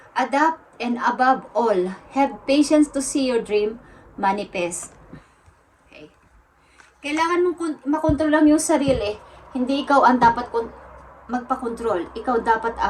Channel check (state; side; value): identical; both; correlation 1.00